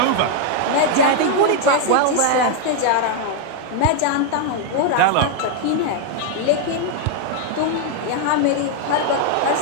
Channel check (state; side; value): different; both; correlation 0.01